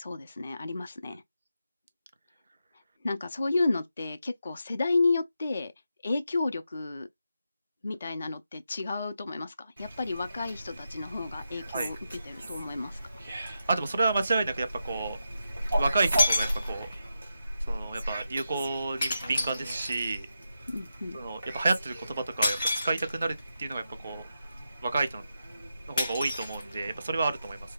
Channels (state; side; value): inverted; both; correlation -0.87